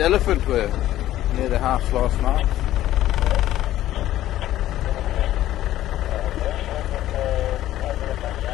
elephants were near the house last night.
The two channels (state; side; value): quieter; right; 13.7 dB